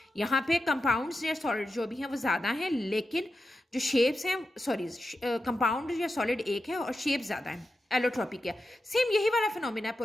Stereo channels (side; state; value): both; normal; correlation 0.90